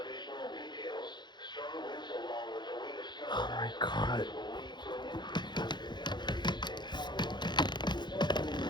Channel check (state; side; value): late; right; 0.21 ms